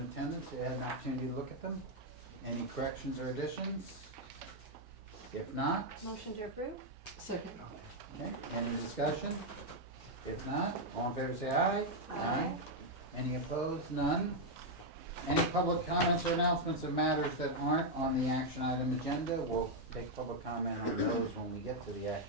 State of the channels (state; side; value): normal; both; correlation 0.00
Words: attendance, you had an opportunity to look at them. Any corrections or additions? If not, Motion to approve. Second. okay, any discussion? If not, all in favor say aye. Aye. Any opposed? None. Any public comments or announcements of matters that aren't on the action item agenda? We'll take public comment on those when we get to the